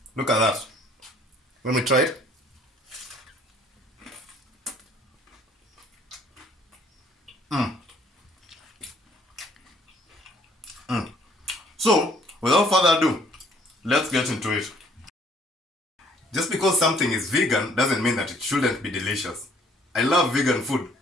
Look at that. Let me try it. So, without further ado, let's get into it. Just because something is vegan doesn't mean that it shouldn't be delicious. I love vegan food.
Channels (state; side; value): normal; both; correlation 0.60